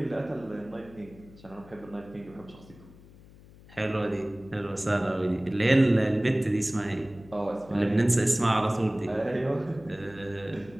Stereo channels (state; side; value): noise; left; hum, 22 dB below the sound